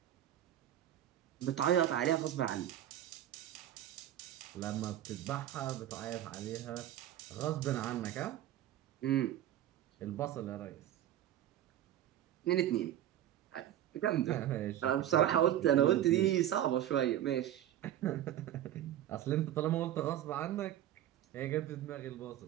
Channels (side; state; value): left; quieter; 12.0 dB